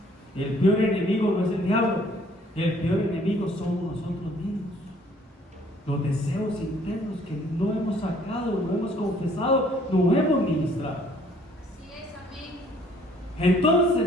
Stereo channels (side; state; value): both; normal; correlation 0.60